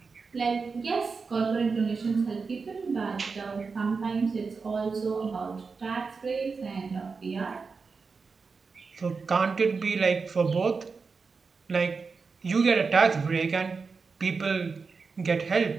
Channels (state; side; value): quieter; left; 4.8 dB